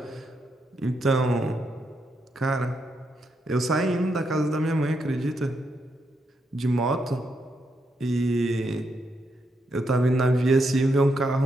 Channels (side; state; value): both; normal; correlation 0.81